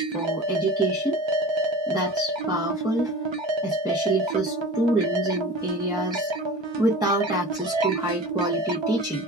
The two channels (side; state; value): both; normal; correlation 0.35